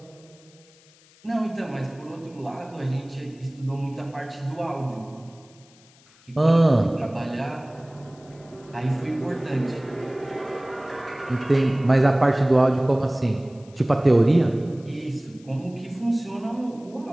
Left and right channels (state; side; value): noise; left; hiss, 28 dB below the sound